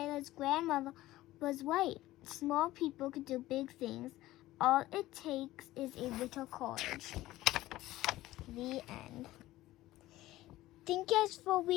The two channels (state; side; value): quieter; right; 16.4 dB